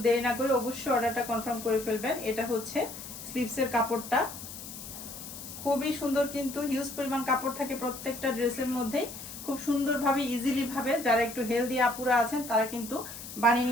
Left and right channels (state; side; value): noise; left; hiss, 11 dB below the sound